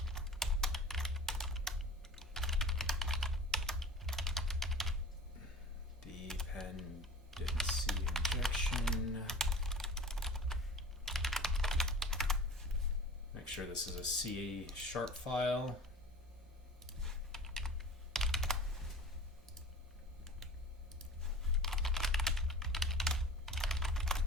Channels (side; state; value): both; normal; correlation 0.39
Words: Dependency injection. Make sure this is a C# file.